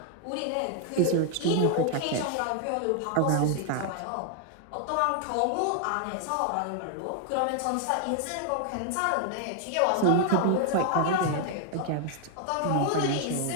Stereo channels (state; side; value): different; both; correlation 0.00